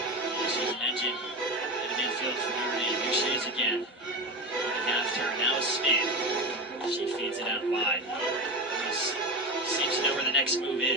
She's an engine in the midfield for Notre Dame. Here she is again. On the half turn, now a spin. She feeds it out wide. Seems to know where the next move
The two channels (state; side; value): normal; both; correlation 0.22